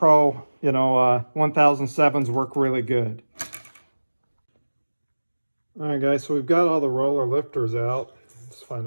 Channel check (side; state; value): both; inverted; correlation -1.00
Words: 1007s work really good. All right, guys, so we've got all the roller lifters out. Let's find